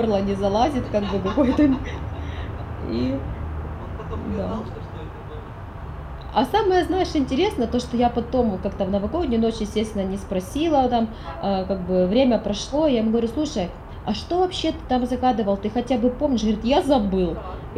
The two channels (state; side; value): identical; both; correlation 1.00